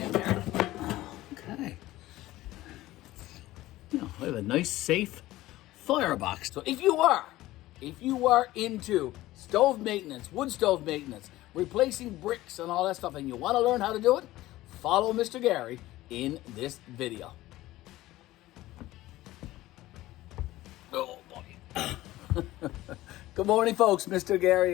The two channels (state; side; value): quieter; right; 16.7 dB